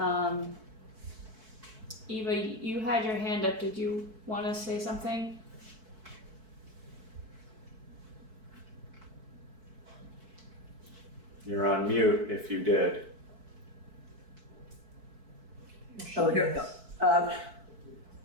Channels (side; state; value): left; late; 4.6 ms